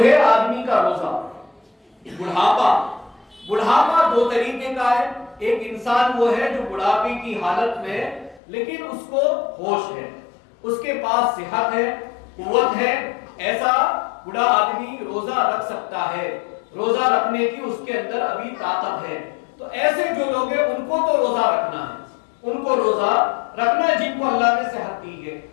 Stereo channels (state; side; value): drops out; right; at 8.4 s